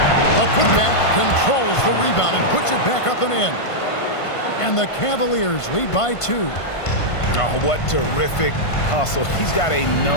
A putback controls the rebound and puts it back up and in. And the Cavaliers lead by 2. Oh, what terrific hustle. He's got a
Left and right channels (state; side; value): late; right; 1.5 ms